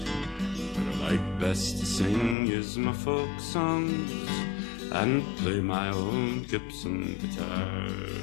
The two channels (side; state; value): right; drops out; at 2.4 s